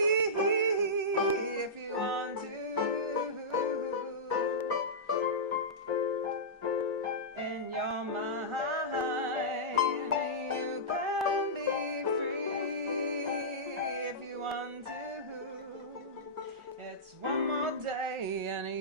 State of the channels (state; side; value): normal; both; correlation -0.14